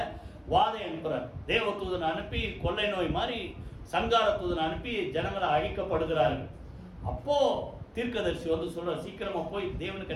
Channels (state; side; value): identical; both; correlation 1.00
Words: வாதை அனுப்புறார். தேவதூதனை அனுப்பி கொள்ளை நோய் மாதிரி சங்கார தூதனை அனுப்பி ஜனங்களை அழிக்கப்படுகிறார்கள். அப்போ தீர்க்கதரிசி வந்து சொல்ற, சீக்கிரமா போய் தேவனுக்கு